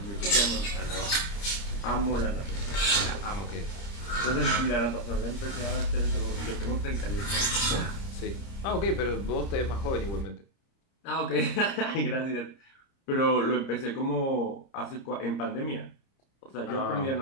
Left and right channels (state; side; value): late; right; 30 ms